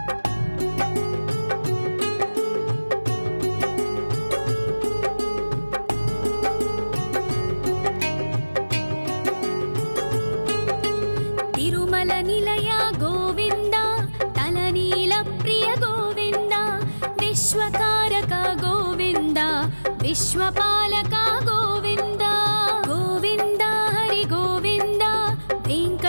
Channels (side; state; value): both; inverted; correlation -1.00